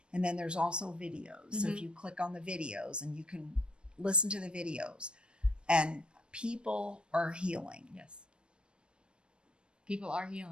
and then there's also videos. So if you click on the videos, and you can listen to the videos, and people are healing. Yes. People are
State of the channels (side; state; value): left; late; 0.055 ms